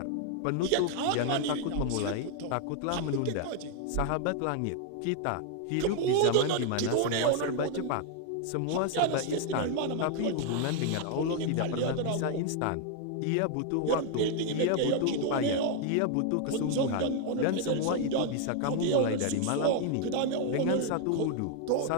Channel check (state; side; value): different; both; correlation 0.00